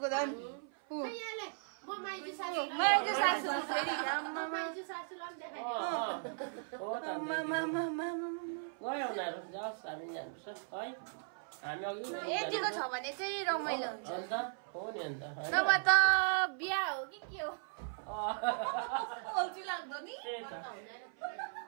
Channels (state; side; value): silent; left; 53 dB below the other